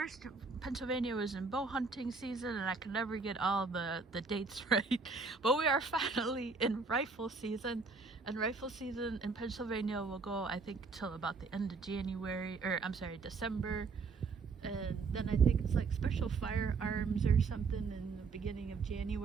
Pennsylvania was in bow hunting season, and I could never get all the dates right. But we are finally in rifle season, and rifle season in Pennsylvania will go, I think, till about the end of December. And then I think it's like special firearms or something in the beginning of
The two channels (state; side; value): quieter; left; 4.5 dB